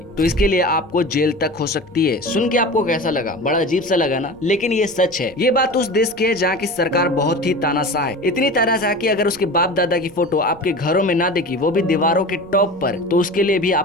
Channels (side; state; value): left; noise; rumble, 25 dB below the sound